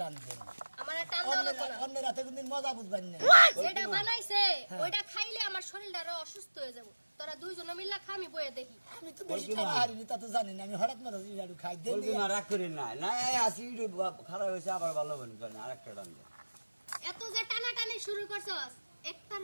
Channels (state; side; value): inverted; both; correlation -1.00